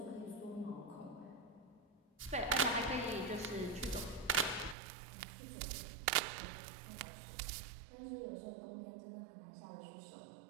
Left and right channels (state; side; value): drops out; left; at 4.8 s